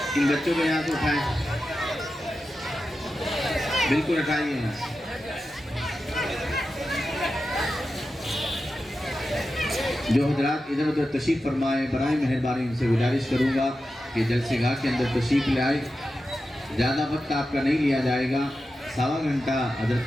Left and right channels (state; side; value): normal; both; correlation 0.91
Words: इन बच्चों को यहाँ से उठाएं, बिल्कुल हटाइए यहाँ से। जो हजरात इधर उधर तशरीफ़ फरमाए, बराए मेहरबानी उनसे गुजारिश करूँगा कि जलसेगाह के अंदर तशरीफ़ ले आए। ज़्यादा वक्त आपका नहीं लिया जाएगा, 1.25 घंटा हजरत